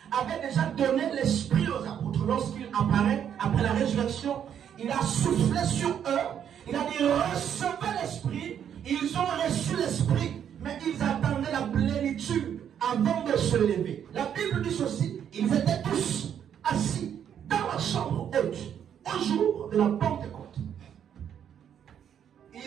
avait déjà donné l'Esprit aux apôtres. Lorsqu'il apparaît, après la résurrection, il a soufflé sur eux. Il a dit, recevez l'Esprit. la plénitude avant de se lever. La Bible dit ceci, ils étaient tous assis dans la chambre haute au jour de la Pentecôte.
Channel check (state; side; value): quieter; left; 9.0 dB